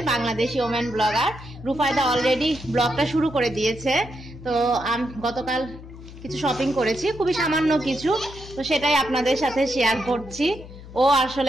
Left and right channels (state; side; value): noise; left; hum, 16 dB below the sound